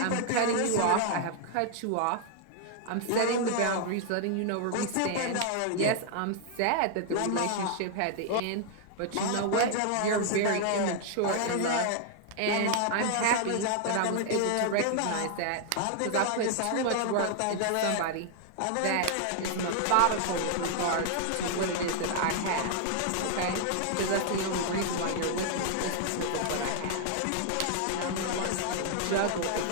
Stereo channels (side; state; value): both; different; correlation 0.00